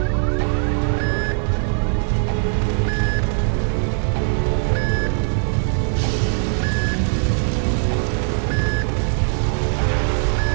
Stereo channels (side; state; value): left; silent; 58 dB below the other